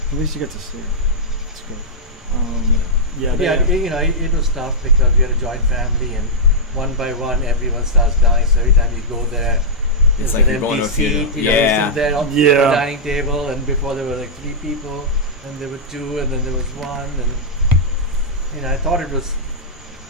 At least you get to see her. That's good. Yeah, it was tough because we had a joint family, and one by one, everyone starts dying. So every time you go there, It's there's like an you're going empty to a funeral. seat. You know, you sit there on the Yeah. dining table, and before there were like 3 people, and there were 2, and then there was 1, and I thought it was.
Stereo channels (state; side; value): normal; both; correlation -0.09